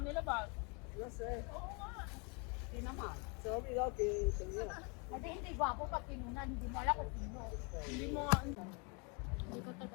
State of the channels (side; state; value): right; quieter; 32.9 dB